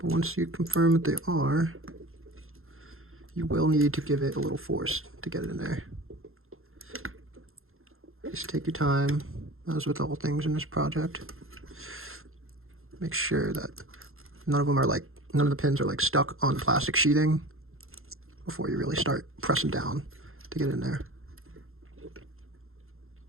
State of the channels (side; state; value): left; late; 0.61 ms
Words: once you confirm that they are, you will need to give it a little force to get it in there. Just take your time, as with all things in this project. Make sure that none of the pins are like stuck on the plastic sheathing before you really start pressing down to get in there.